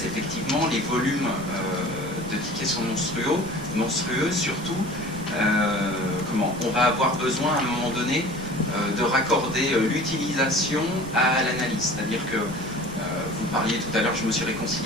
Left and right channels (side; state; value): right; noise; rumble, 15 dB below the sound